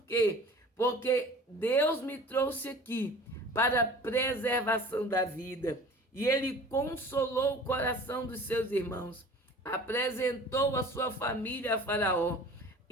quê? Porque Deus me trouxe aqui para a preservação da vida. E ele consolou o coração dos seus irmãos, apresentou a sua família a Faraó,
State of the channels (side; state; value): both; normal; correlation 0.44